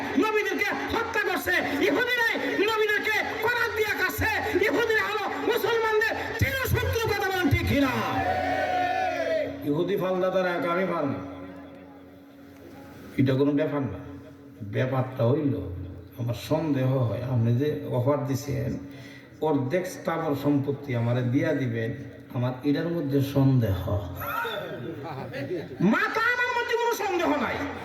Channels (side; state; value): both; identical; correlation 1.00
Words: নবীদেরকে হত্যা করছে, ইহুদিরাই নবীদেরকে করাত দিয়া কাছে। ইহুদিরা হলো মুসলমানদের চিরশত্রু। কথা বলেন ঠিক কিনা? ইহুদি ফালদাতার আমি ফাল না, এটা কোনো ব্যাপার না। ব্যাপারটা হইল আমার সন্দেহ হয়, আপনি যে অফার দিছেন অর্ধেক স্থাবর সম্পত্তি আমারে দিয়া দিবেন, আমার এটার মধ্যে সন্দেহ। মাথা আমার মধ্যে কোনো সন্দেহ নাই,